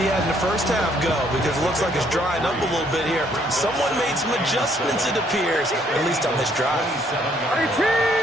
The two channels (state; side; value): normal; both; correlation 0.67